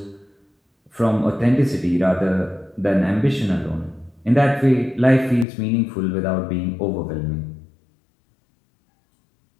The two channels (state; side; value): drops out; right; at 5.5 s